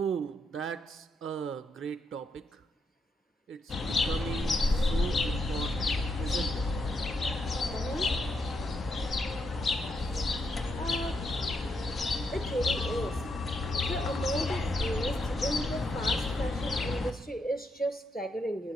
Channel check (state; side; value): normal; both; correlation 0.80